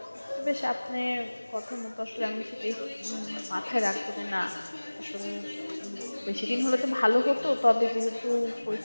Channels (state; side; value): inverted; both; correlation -1.00